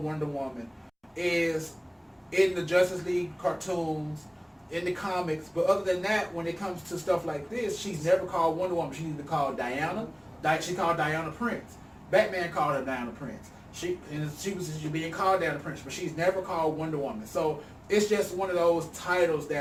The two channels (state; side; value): identical; both; correlation 1.00